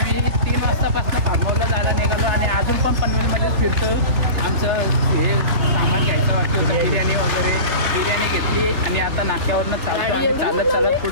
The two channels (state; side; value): late; left; 3.7 ms